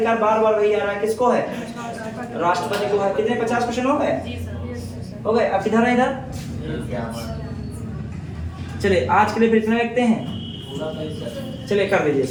बार बार वही आ रहा है, किसको है? राष्ट्रपति को है। कितने 50 क्वेश्चन हो गए? हो गए। अब किधर है? इधर। चलिए आज के लिए फिर इतना रखते हैं। चलिए कर दीजिए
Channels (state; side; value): identical; both; correlation 1.00